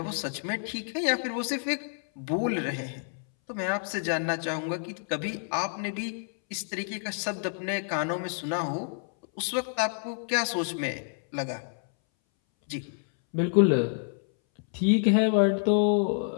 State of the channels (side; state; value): right; silent; 59 dB below the other